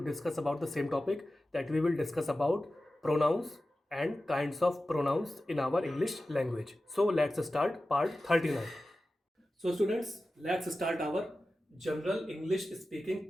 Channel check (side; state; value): both; normal; correlation 0.94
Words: discuss about the same topic, that we will discuss about pronouns and kinds of pronouns in our English language. So let's start part 39. So students, let's start our General English Speaking